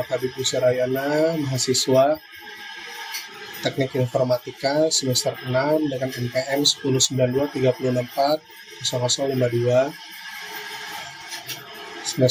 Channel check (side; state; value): both; identical; correlation 1.00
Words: Habib Rayana, mahasiswa Teknik Informatika semester 6 dengan NPM 10923640052